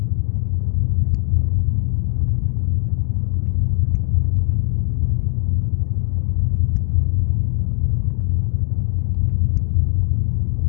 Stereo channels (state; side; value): silent; right; 65 dB below the other